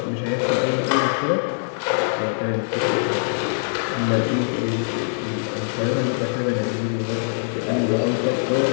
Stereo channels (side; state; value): right; silent; digital silence